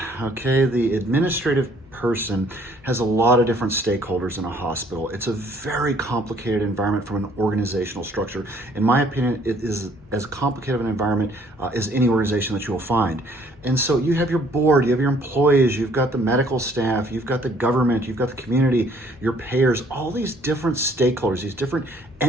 Okay, the administrative person has a lot of different stakeholders in a hospital. It's a very complicated environment from an organizational structure. In my opinion, it is as complicated of an environment as any organization that you will find. And so you have your board, you have your employees, you've got the medical staff, you've got the government, you've got the community, your payers, all these different stakeholders, these different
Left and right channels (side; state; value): both; normal; correlation 0.61